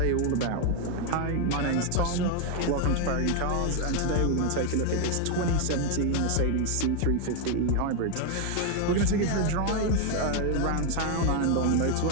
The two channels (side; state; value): both; different; correlation 0.01